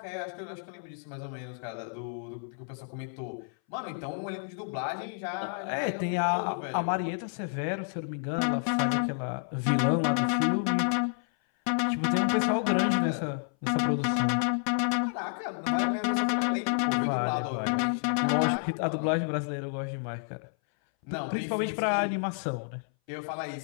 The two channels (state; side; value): silent; right; 58 dB below the other